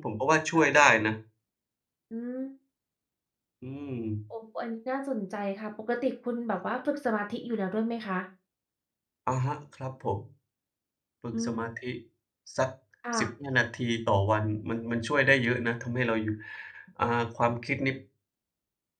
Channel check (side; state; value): both; identical; correlation 1.00